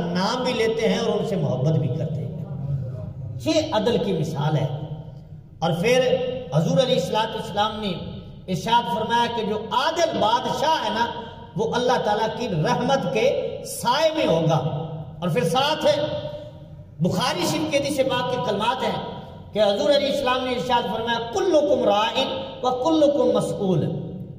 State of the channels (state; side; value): identical; both; correlation 1.00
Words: بھی لیتے ہیں اور ان سے محبت بھی کرتے ہیں۔ یہ عدل کی مثال ہے۔ اور پھر حضور علیہ السلام نے ارشاد فرمایا کہ جو عادل بادشاہ ہے نا وہ اللہ تعالیٰ کی رحمت کے سائے میں ہوگا۔ اور پھر ساتھ ہے بخاری شریف کے حدیث پاک کے کلمات ہیں کہ حضور علیہ السلام نے ارشاد فرمایا کلکم راعٍ وکلکم مسئول،